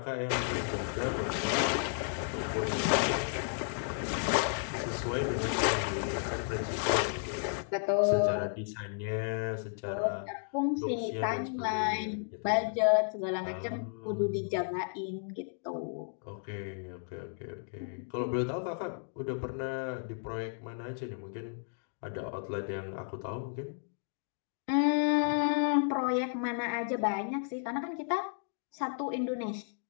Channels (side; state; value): right; silent; digital silence